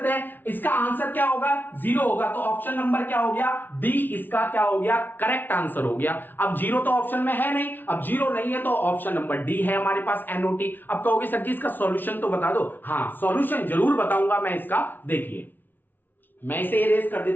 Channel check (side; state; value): right; late; 0.090 ms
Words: हैं। इसका आंसर क्या होगा, 0 होगा। तो ऑप्शन नंबर क्या हो गया, डी इसका क्या हो गया, करेक्ट आंसर हो गया। अब 0 तो ऑप्शन में है नहीं, अब 0 नहीं है तो ऑप्शन नंबर डी है हमारे पास, एनओटी। अब कहोगे सर जी इसका सॉल्यूशन तो बता दो। हाँ, सॉल्यूशन जरूर बताऊंगा मैं इसका। देखिए मैं इसे इरेज कर